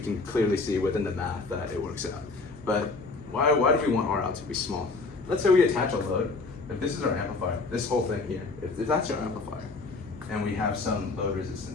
can clearly see within the math that it works out. But why do we want R out to be small? Let's say we attach a load. If this is our amplifier, this whole thing here, if that's our amplifier, and we have some load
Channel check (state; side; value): quieter; right; 3.8 dB